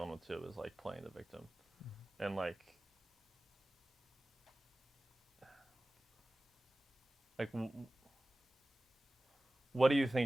with too is like playing the victim, and like what do you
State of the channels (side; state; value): both; normal; correlation 0.97